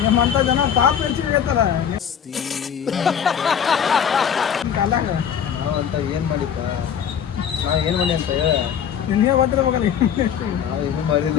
ನಿಮ್ಮಂಥ ಜನ ಪಾಪ ಹೆಚ್ಚಿಗೆ ಐತಲ್ಲ ಕಾಲಾಗ. ನಾವು ಅಂತ ಏನು ಮಾಡಿಪ್ಪ? ನಾವು ಏನು ಮಾಡಿ ಅಂತ ಹೇಳ. ನಿನ್ನೆ ಬರ್ತಿರ್ಬೇಕಲ್ಲ. ನಾವು ಏನೂ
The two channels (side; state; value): right; quieter; 8.3 dB